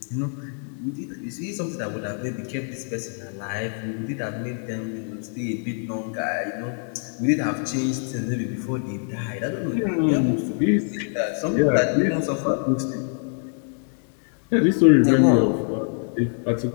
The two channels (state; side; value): silent; right; 56 dB below the other